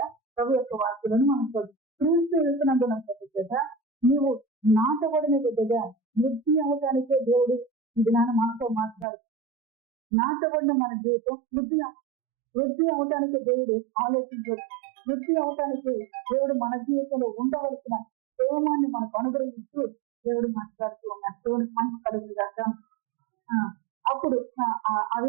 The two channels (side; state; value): left; drops out; at 9.1 s